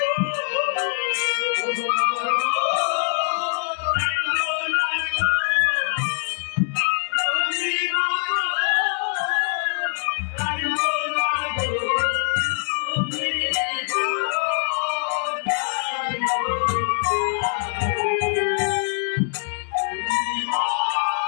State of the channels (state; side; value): silent; right; 63 dB below the other